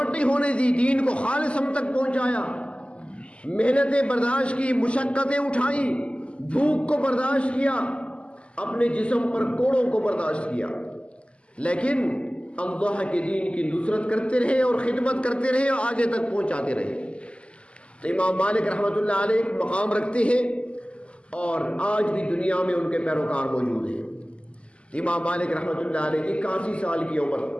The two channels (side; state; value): right; late; 0.056 ms